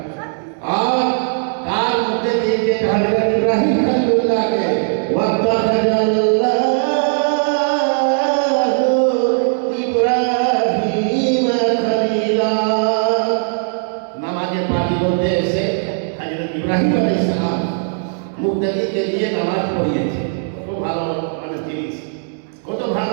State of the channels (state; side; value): silent; left; 66 dB below the other